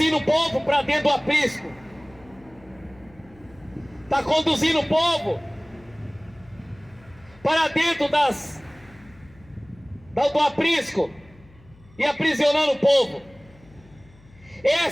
o povo para dentro do aprisco, está conduzindo o povo para dentro do aprisco e aprisionando o povo.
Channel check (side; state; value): left; noise; hum, 26 dB below the sound